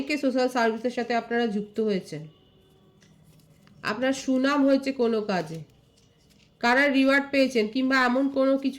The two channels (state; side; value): identical; both; correlation 1.00